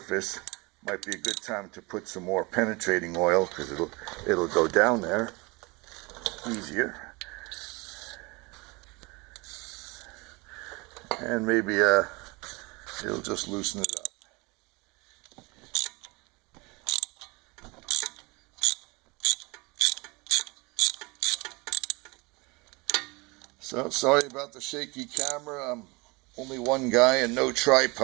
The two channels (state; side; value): quieter; left; 26.0 dB